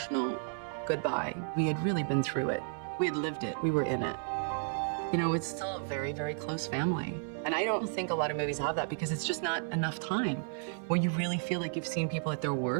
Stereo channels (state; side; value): silent; left; 56 dB below the other